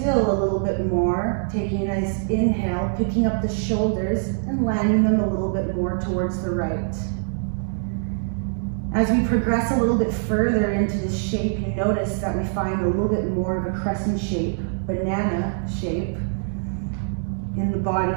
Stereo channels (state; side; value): silent; left; digital silence